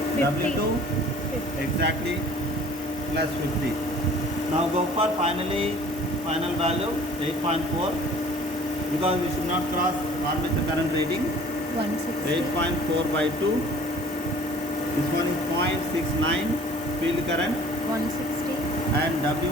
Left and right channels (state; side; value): normal; both; correlation 0.51